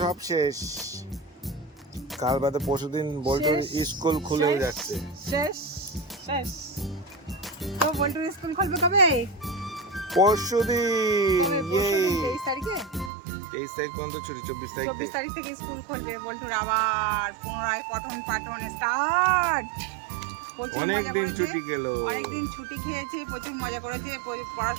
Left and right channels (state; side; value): drops out; left; at 13.1 s